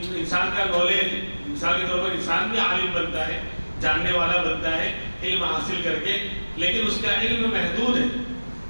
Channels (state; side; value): inverted; both; correlation -1.00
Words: کا نالج, مثال کے طور پر انسان بھی عالم بنتا ہے, جاننے والا بنتا ہے علم حاصل کر کے, لیکن اس کا علم محدود ہے,